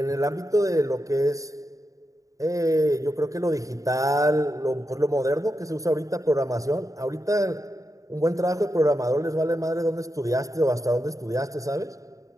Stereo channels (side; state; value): left; late; 0.16 ms